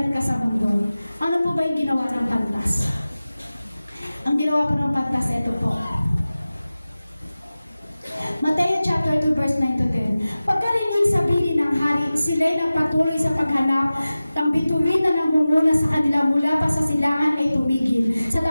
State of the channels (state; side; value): inverted; both; correlation -0.96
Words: ka sa mundo. Ano po ba yung ginawa ng pantas? Ang ginawa po ng pantas, ito po. Mateo chapter 2 verse 9 to 10. Pagkarinig sa bilin ng hari, sila'y nagpatuloy sa paghanap. Ang bituin na nangunguna sa kanila mula pa sa silangan ay tumigil sa